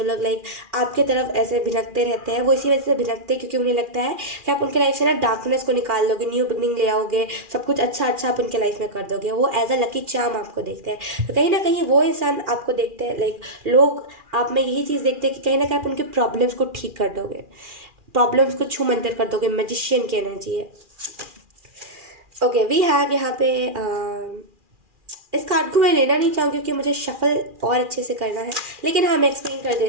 लोग लाइक आपके तरफ ऐसे भिनकते रहते हैं, वो इसी वजह से भिनकते हैं क्योंकि उन्हें लगता है कि आप उनके लाइफ से ना डार्कनेस को निकाल दोगे, न्यू बिगनिंग ले आओगे, सब कुछ अच्छा अच्छा आप उनके लाइफ में कर दोगे। वो एज अ लकी चार्म आपको देखते हैं। तो कहीं ना कहीं वो इंसान आपको देखते हैं, लाइक लोग आप में यही चीज़ देखते हैं कि कहीं ना कहीं आप उनके प्रॉब्लम्स को ठीक कर दोगे, प्रॉब्लम्स को छू मंतर कर दोगे। मैजिशियन की एनर्जी है। ओके, वी हैव यहाँ पे इस कार्ड को मैं लेना नहीं चाहूँगी क्योंकि मुझे शफल और अच्छे से करना है, लेकिन हाँ मैं एक्सप्लेन कर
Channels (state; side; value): late; left; 2.4 ms